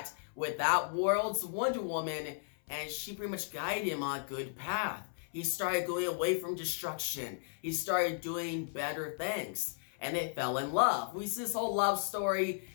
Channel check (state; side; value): silent; right; 54 dB below the other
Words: with that world's Wonder Woman, and she pretty much guided him on a good path. He started going away from destruction. He started doing better things. And they fell in love. We see this whole love story,